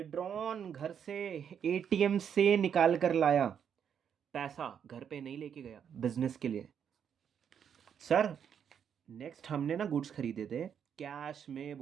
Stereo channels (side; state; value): left; quieter; 8.1 dB